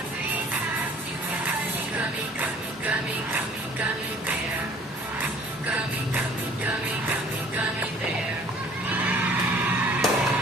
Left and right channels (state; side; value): normal; both; correlation 0.54